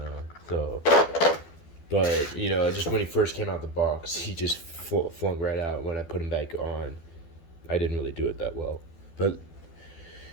So, but, you know, just when he first came out the box, he just flung right out. When I put him back on, I didn't really do it that well. But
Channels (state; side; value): late; right; 12 ms